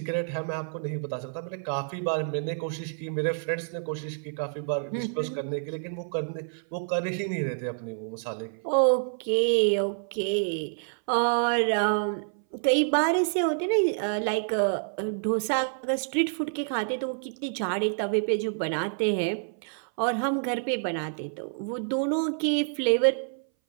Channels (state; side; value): silent; left; 59 dB below the other